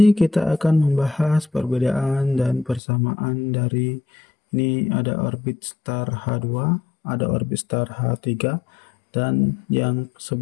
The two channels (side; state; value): right; drops out; at 2.8 s